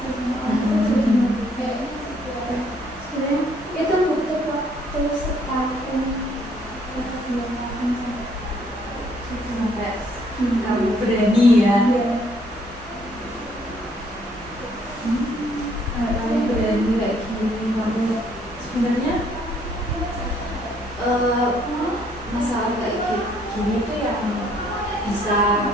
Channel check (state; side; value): normal; both; correlation 0.66